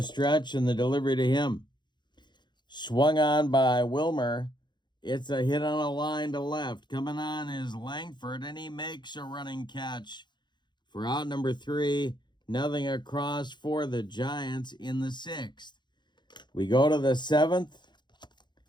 stretch and the delivery to him. Swung on by Wilmer. It's a hit on a line to left. Coming on is Langford, and he makes a running catch for out number 3. Nothing across for the Giants in the 6th. We go to the 7th.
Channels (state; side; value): late; right; 0.22 ms